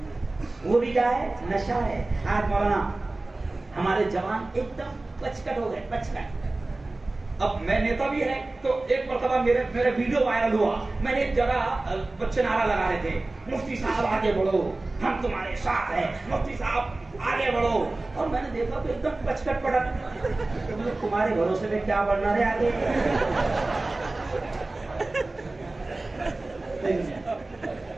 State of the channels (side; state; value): left; quieter; 3.0 dB